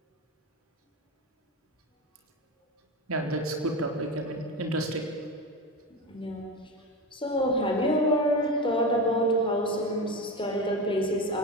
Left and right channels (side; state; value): both; normal; correlation 0.22